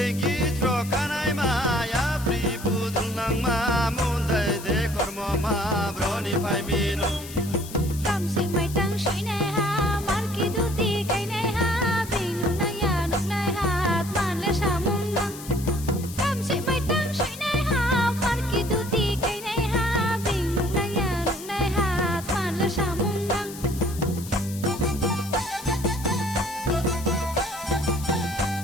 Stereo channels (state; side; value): noise; left; hiss, 14 dB below the sound